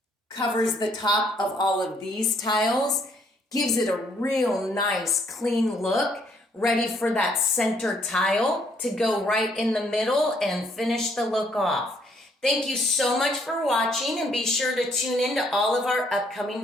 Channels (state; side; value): normal; both; correlation 0.68